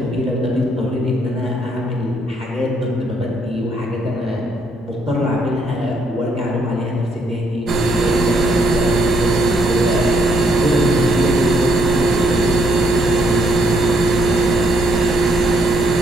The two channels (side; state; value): both; normal; correlation 0.71